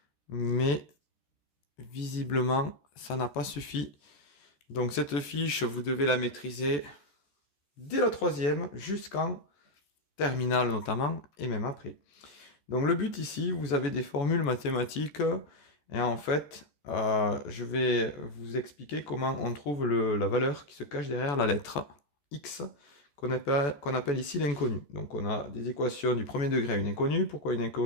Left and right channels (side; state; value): right; late; 14 ms